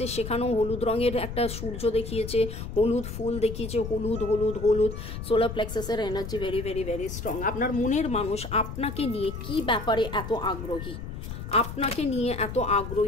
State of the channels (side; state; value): left; noise; rumble, 8 dB below the sound